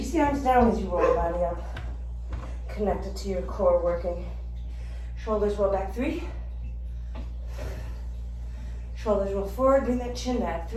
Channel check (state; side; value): identical; both; correlation 1.00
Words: the arms down as you roll the body up. Connect it to your core working. Shoulders roll back. 3. Shoulders roll forward. Bring that chin back.